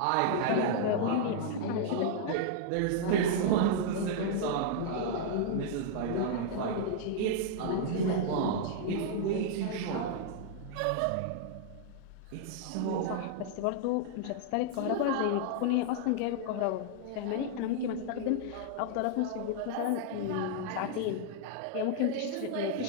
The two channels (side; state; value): both; different; correlation -0.01